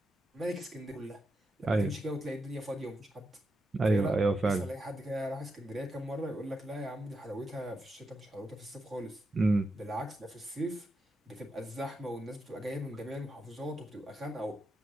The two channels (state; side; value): normal; both; correlation 0.86